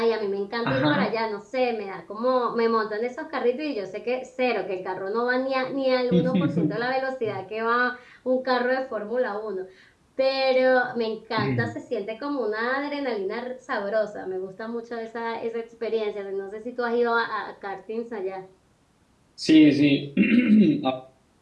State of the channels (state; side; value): identical; both; correlation 1.00